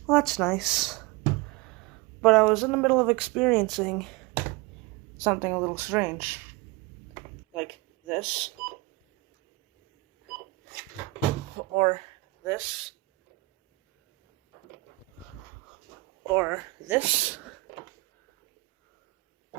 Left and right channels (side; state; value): left; quieter; 21.8 dB